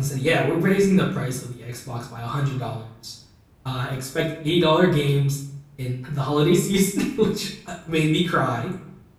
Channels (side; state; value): both; identical; correlation 1.00